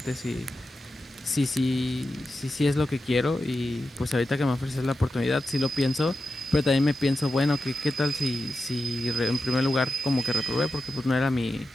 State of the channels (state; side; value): normal; both; correlation 0.91